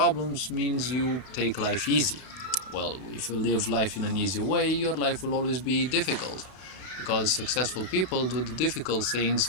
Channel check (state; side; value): late; right; 32 ms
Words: means you take life easy. Well, if you live life in an easy way, your life will always be difficult, because successful people do the difficult things